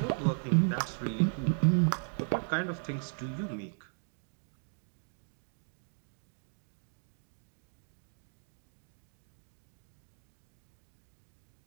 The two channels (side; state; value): left; silent; 53 dB below the other